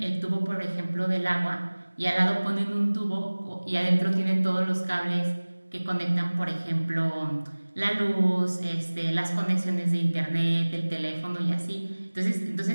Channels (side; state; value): both; inverted; correlation -1.00